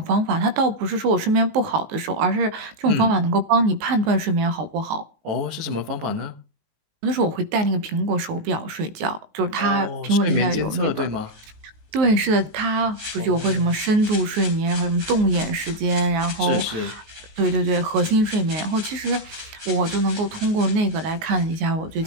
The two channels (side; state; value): left; late; 19 ms